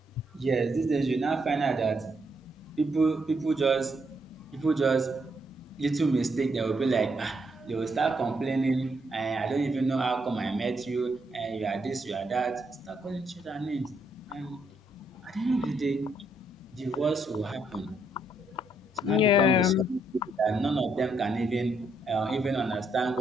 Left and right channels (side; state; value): both; normal; correlation 0.75